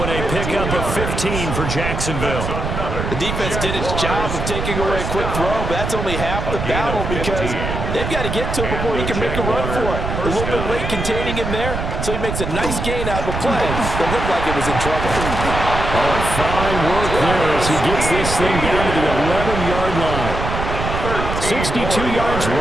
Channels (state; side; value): noise; right; rumble, 4 dB below the sound